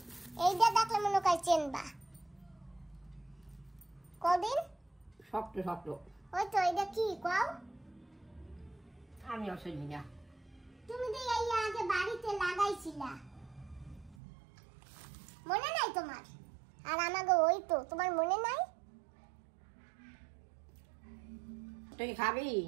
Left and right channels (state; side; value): drops out; left; at 14.2 s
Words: এইটা দেখলে মনে হয় চেনবা। কদিন শক্ত শক্ত। ওই তো, এইটা কি কও? আমি অসুবিধা না। তুমি তো এই আগে বাড়িতে লাগাইছিলা, মনে নাই তোমার? আর আমাকে ওই তো, তোমার মনে নাই? তুই খাবি?